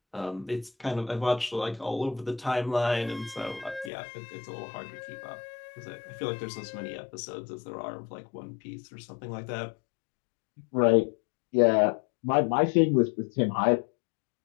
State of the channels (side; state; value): right; drops out; at 3.9 s